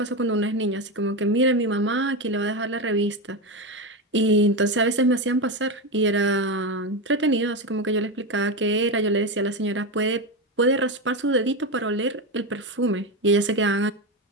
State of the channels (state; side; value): normal; both; correlation 0.14